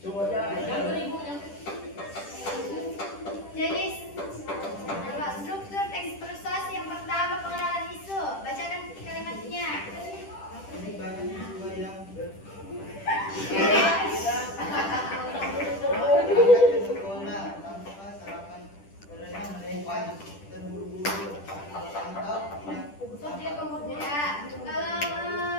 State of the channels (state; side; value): late; right; 10 ms